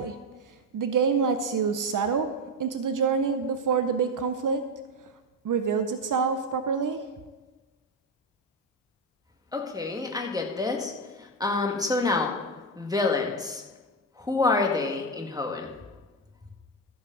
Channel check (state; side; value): normal; both; correlation 0.09